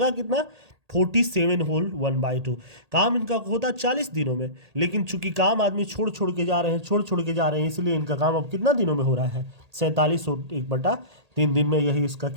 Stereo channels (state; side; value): late; left; 1.8 ms